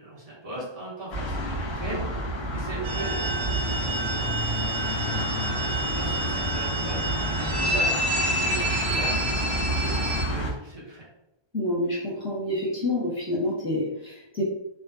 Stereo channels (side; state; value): left; late; 1.2 ms